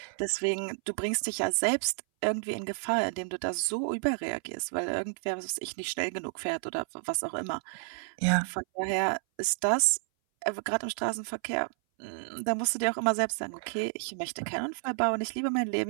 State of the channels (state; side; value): silent; left; 57 dB below the other